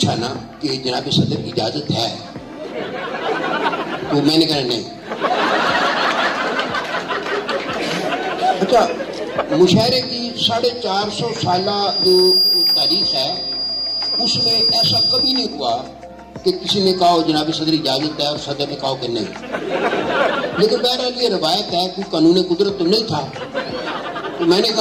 نا کہ جناب صدر اجازت ہے، تو میں نے کہا نہیں. اچھا مشاعرے کی 450 سالہ جو تاریخ ہے اس میں ایسا کبھی نہیں ہوا کہ کسی نے کہا جناب صدر اجازت ہے اور صدر نے کہا کہ نہیں. لیکن بہرحال یہ روایت ہے، کوئی قانون قدرت تو نہیں تھا. تو میں نے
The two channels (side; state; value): both; identical; correlation 1.00